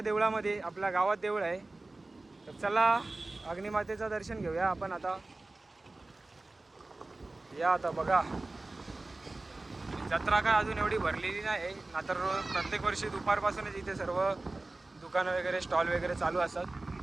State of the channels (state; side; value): quieter; left; 3.0 dB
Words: आपल्या गावात देऊळ आहे. तर चला अग्निमातेचं दर्शन घेऊया आपण आता. या आता बघा, जत्रा काय अजून एवढी भरलेली नाही ना, तर प्रत्येक वर्षी दुपारपासूनच इथे सर्व दुकानं वगैरे स्टॉल वगैरे चालू